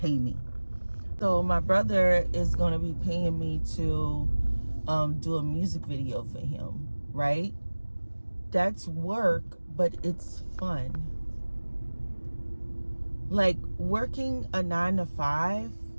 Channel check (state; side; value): inverted; both; correlation -1.00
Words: me. So my brother is going to be paying me to do a music video for him, right? That's work, but it's fun. Like, working a 9-to-5